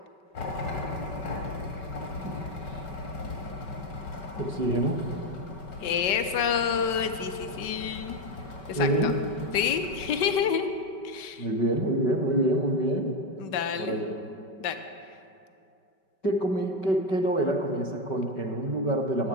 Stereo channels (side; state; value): right; late; 5.2 ms